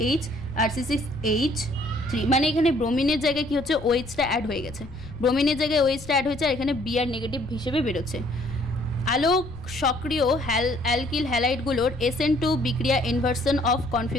আর C6H3, মানে এখানে ব্রোমিনের জায়গায় কি হচ্ছে OHটা অ্যাড হয়ে গেছে, ব্রোমিনের জায়গায় OHটা অ্যাড হয়েছে, আর এখানে Br নেগেটিভ হিসেবে বেরোচ্ছে। আলোক সক্রিয় অ্যালকিল হ্যালাইডগুলোর SN2 বিক্রিয়া ইনভার্সন অফ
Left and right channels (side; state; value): left; noise; rumble, 16 dB below the sound